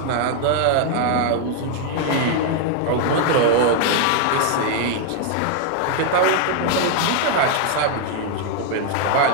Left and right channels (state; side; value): different; both; correlation 0.00